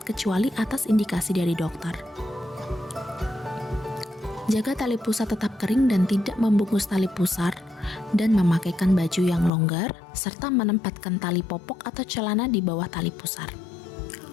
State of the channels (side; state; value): right; drops out; at 9.5 s